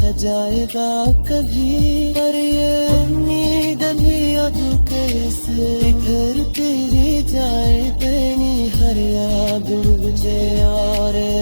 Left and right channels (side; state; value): both; inverted; correlation -1.00